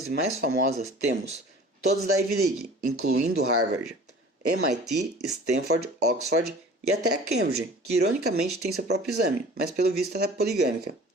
e mais famosas temos todas da Ivy League, incluindo Harvard, MIT, Stanford, Oxford e até a Cambridge, que ironicamente tem seu próprio exame, mas pelo visto ela é poligâmica.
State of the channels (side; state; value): both; normal; correlation 0.45